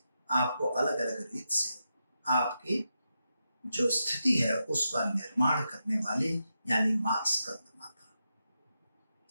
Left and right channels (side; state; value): both; inverted; correlation -0.87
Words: आपको अलग अलग रीत से आपकी जो स्थिति है उसका निर्माण करने वाली यानी माँ स्कंद माता।